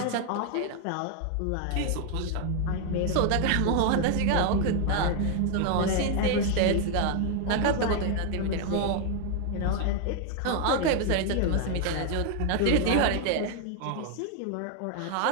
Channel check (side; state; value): both; different; correlation 0.00